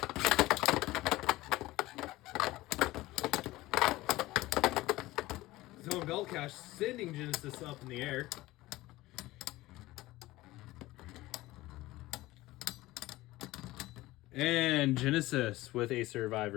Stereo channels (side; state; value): right; quieter; 18.2 dB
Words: Zone bell cache sending Genesis up in the air. And Genesis with a